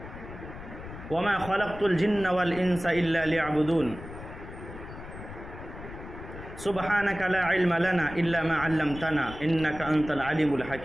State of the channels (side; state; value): left; noise; rumble, 13 dB below the sound